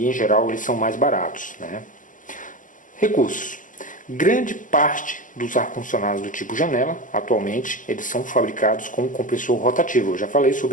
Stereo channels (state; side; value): late; right; 0.38 ms